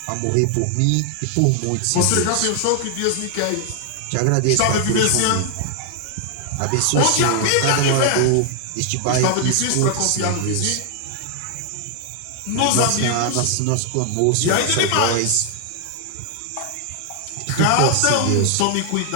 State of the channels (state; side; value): different; both; correlation 0.00